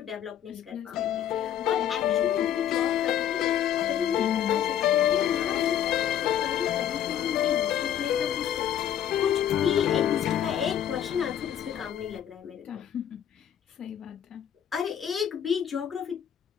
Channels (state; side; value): quieter; right; 10.0 dB